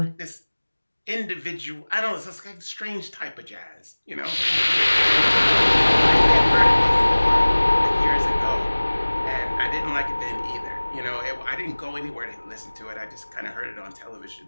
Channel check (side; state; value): both; inverted; correlation -1.00